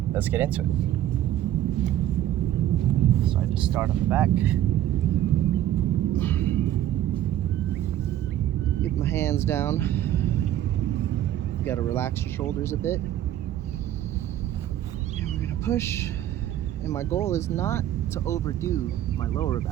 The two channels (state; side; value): quieter; left; 12.3 dB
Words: Let's get into it. So I just start on the back. Get my hands down. You gotta relax your shoulders a bit. And we're gonna push. And my goal is not to overdo my lower